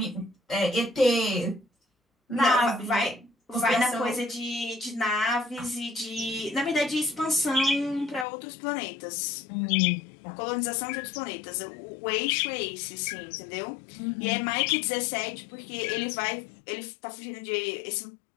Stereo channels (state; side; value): drops out; right; at 8.2 s